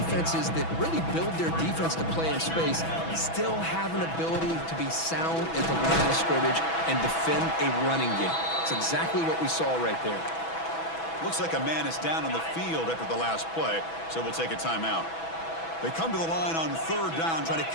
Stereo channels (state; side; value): late; right; 6.1 ms